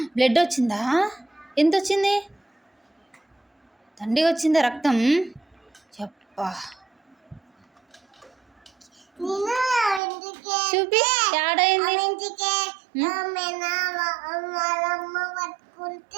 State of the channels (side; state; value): left; drops out; at 10.0 s